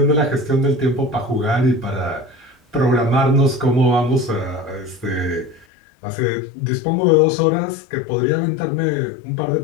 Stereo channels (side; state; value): right; drops out; at 5.7 s